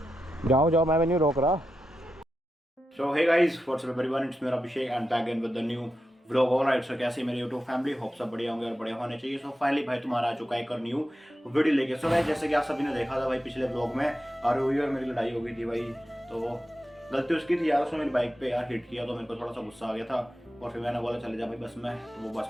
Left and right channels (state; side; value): normal; both; correlation 0.89